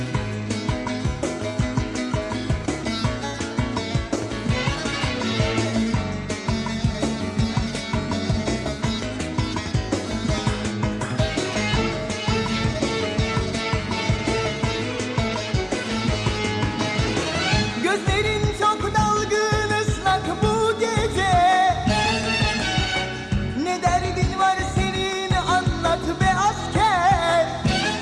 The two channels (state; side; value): identical; both; correlation 1.00